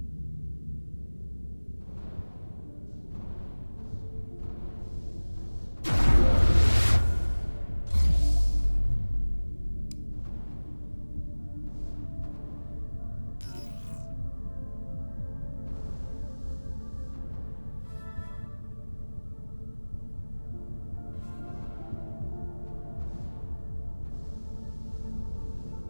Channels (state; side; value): inverted; both; correlation -1.00